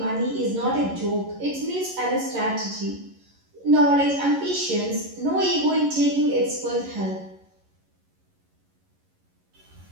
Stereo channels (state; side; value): late; left; 11 ms